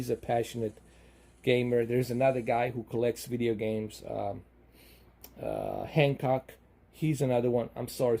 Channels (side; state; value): both; identical; correlation 1.00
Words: a passionate gamer. There's another guy who collects video games. Hancock, he's another one. I'm sorry.